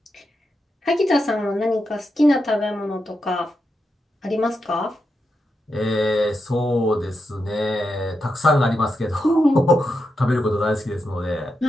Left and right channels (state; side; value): normal; both; correlation 0.86